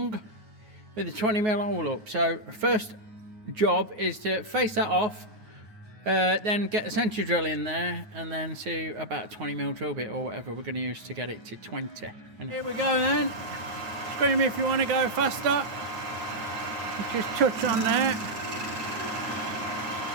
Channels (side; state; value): left; late; 9.4 ms